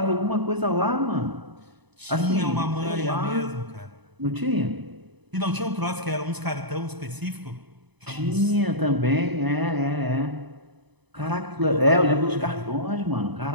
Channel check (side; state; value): left; late; 1.0 ms